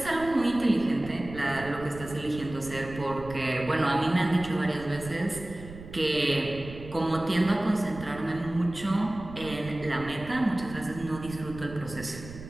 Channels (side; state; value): right; noise; rumble, 14 dB below the sound